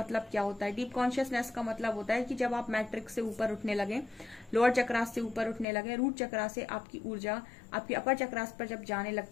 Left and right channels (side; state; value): right; drops out; at 5.7 s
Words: क्या होता है। डीप कॉन्शियसनेस का मतलब होता है कि जब आप मैट्रिक्स से ऊपर उठने लगे, लोअर चक्रास से ऊपर उठने लगे, रूट चक्रा से आपकी ऊर्जा आपकी अपर चक्रास पर जब जाने